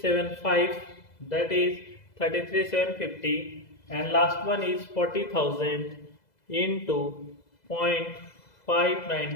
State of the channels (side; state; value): right; late; 2.0 ms